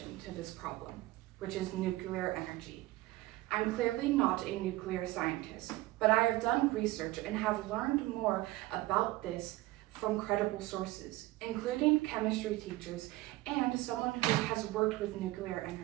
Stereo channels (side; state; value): left; quieter; 18.2 dB